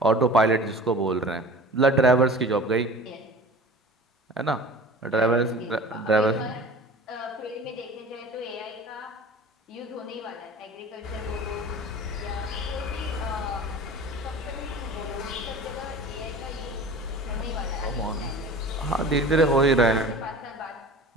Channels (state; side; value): normal; both; correlation 0.40